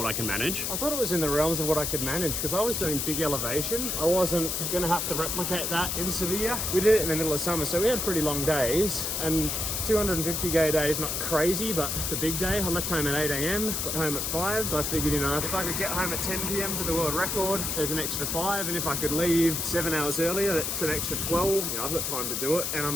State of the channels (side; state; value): left; noise; hiss, 1 dB below the sound